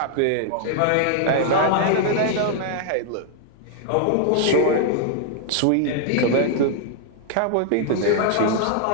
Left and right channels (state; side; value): different; both; correlation 0.00